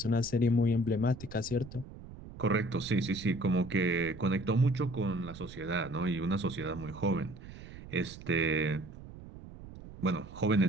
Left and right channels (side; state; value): right; noise; rumble, 15 dB below the sound